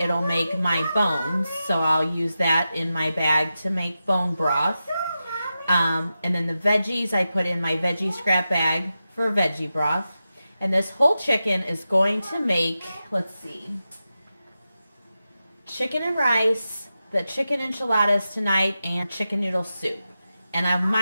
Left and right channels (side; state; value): both; inverted; correlation -0.91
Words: make my bones. So I'll use that in my bag to make bone broth. And then the veggies I put in my veggie scrap bag for veggie broth. And this whole chicken is going to make, let's see, chicken and rice, the chicken enchiladas tonight, and chicken noodle soup. And I